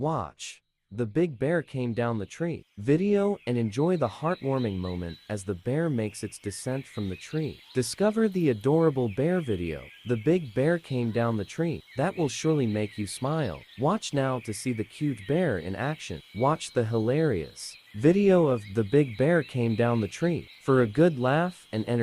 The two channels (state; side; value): identical; both; correlation 1.00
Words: Watch. The big bear came down the tree. Video and enjoy the heartwarming moment as the bear makes its descent from the tree. Discover the adorable bear video. The big bear came down the tree. That will surely make you smile. Watch now to see the cute bear in action. Watch the hilarious video of the big bear came down the tree for a good laugh and